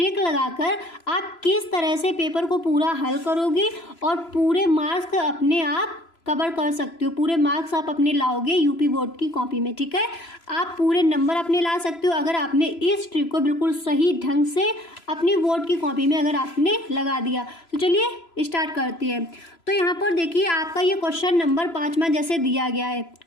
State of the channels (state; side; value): late; right; 3.0 ms